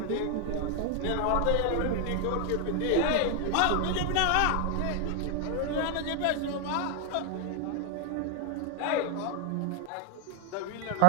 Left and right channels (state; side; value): different; both; correlation 0.01